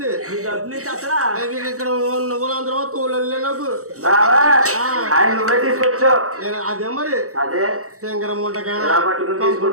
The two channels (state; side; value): late; left; 0.65 ms